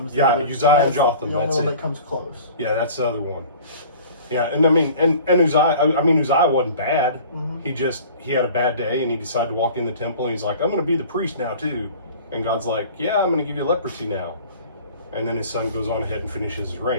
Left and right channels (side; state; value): both; inverted; correlation -0.45